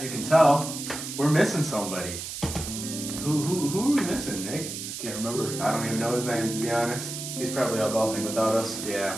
you can tell, we're missing somebody. Who are we missing, Nick? I can't remember. I don't even know his name, to be honest. He's probably out golfing without us. Yeah,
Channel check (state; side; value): noise; right; hiss, 7 dB below the sound